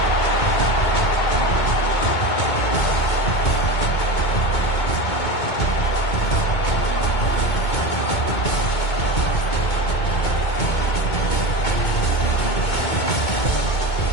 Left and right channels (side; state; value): right; late; 2.2 ms